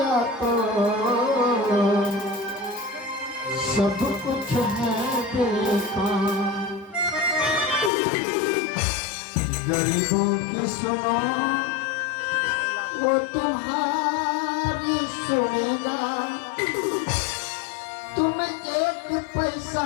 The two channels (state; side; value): drops out; right; at 7.9 s